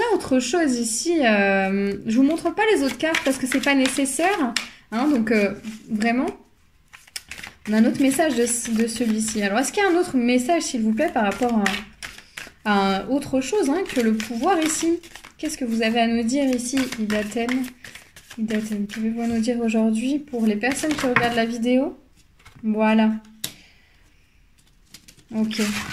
autre chose ici Je vous montre pas les autres cartes parce que c'est pas nécessaire. Hein, donc, vraiment... On a un autre message de celui-ci. Alors, est-ce qu'il y a un autre message, s'il vous plaît, par rapport à autre chose hein, que le pouvoir ici? Qu'est-ce que vous avez à nous dire ici, Idaten? Pouvez-vous nous dire aujourd'hui pour les personnes qui regardent la vidéo? Voilà. Ok.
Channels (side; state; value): both; identical; correlation 1.00